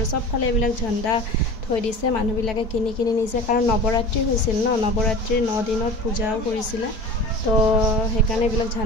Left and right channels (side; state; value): right; late; 4.5 ms